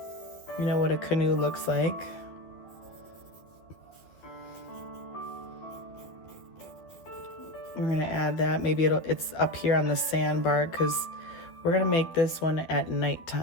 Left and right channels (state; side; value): late; right; 11 ms